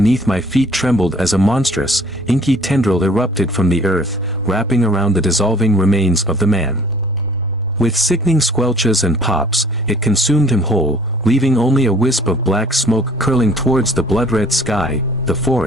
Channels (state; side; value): normal; both; correlation 0.54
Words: my feet trembled as a monstrous, inky tendril erupted from the earth, wrapping around the dissolving remains of the man. With sickening squelches and pops, it consumed him whole, leaving only a wisp of black smoke curling towards the blood-red sky. The